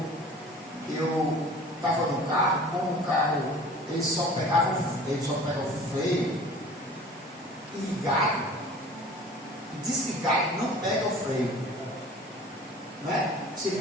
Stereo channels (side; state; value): both; normal; correlation 0.44